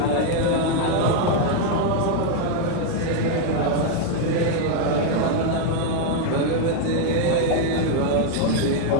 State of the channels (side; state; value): both; different; correlation 0.00